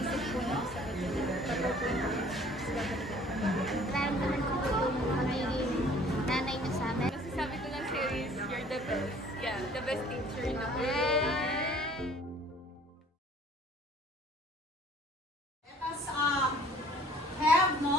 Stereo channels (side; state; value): both; normal; correlation 0.54